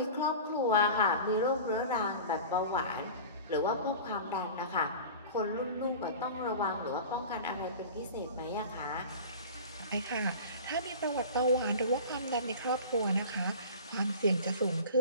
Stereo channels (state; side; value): inverted; both; correlation -0.36